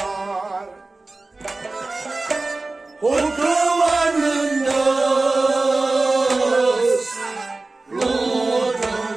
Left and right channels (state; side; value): quieter; left; 3.3 dB